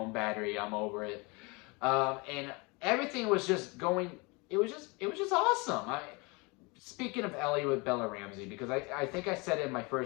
battery. I'm over it. And everything was just going, it was just awesome. Speaking of Ellie with Bella Ramsey, because I think I said it in my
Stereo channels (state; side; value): quieter; right; 27.8 dB